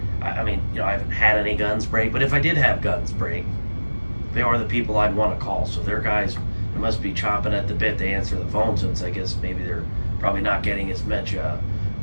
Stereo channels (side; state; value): both; inverted; correlation -1.00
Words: I mean, you know, I haven't had any guns break, but if I did have guns break, they are the people I'd want to call. So their guys, they must be chomping at the bit to answer the phone, since I guess maybe they're probably not getting as much